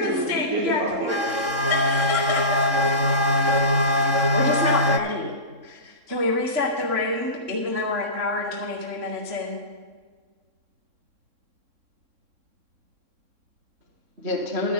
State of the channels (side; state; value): left; late; 3.6 ms